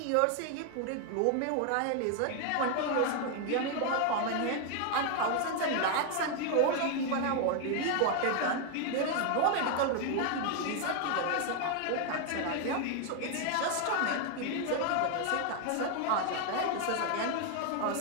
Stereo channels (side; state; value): both; different; correlation 0.00